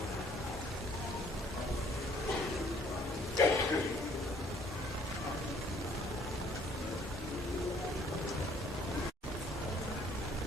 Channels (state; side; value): normal; both; correlation 0.60